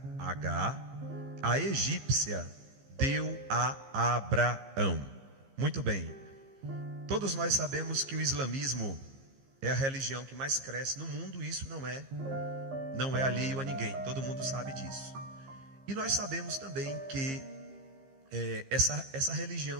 Agar, a egípcia, deu a Abraão. Muito bem. Todos nós sabemos que o islamismo é a religião que mais cresce no mundo. Isso não é alheio a ninguém. Todo mundo sabe disso. E nós sabemos também que essa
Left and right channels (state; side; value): late; left; 15 ms